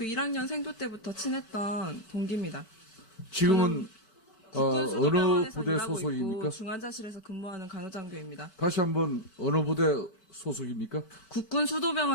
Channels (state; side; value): late; right; 4.5 ms